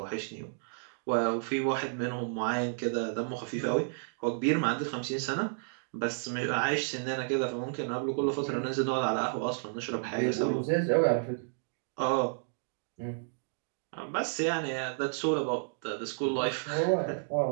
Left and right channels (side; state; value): left; silent; digital silence